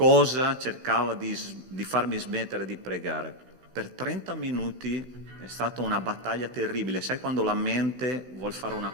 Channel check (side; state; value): left; late; 16 ms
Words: cercava di farmi smettere di pregare. Per 30 minuti è stata una battaglia terribile. Sai quando la mente vuol fare una